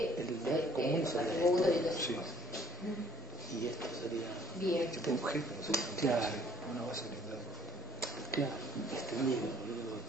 los atributos y todas esas cosas. Y esto sería Bien. Tipo objeto, no sé, Claro. una base de datos. claro, extendido, boludo,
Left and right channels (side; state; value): both; normal; correlation 0.61